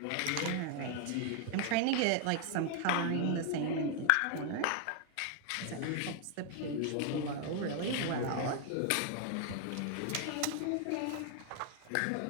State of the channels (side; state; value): both; different; correlation 0.00